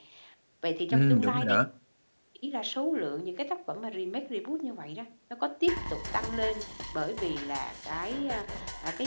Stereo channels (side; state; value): both; inverted; correlation -1.00